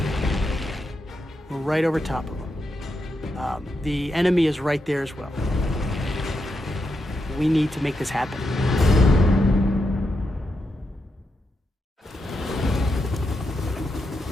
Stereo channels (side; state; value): both; normal; correlation 0.84